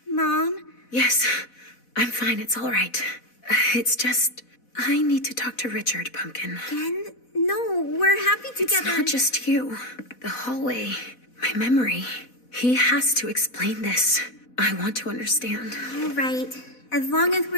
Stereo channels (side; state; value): right; late; 4.1 ms